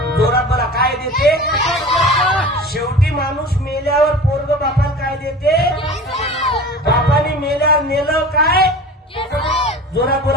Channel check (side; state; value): both; normal; correlation 0.37